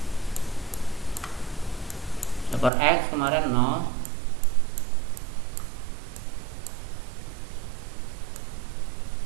per x kemarin 0,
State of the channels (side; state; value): left; drops out; at 2.7 s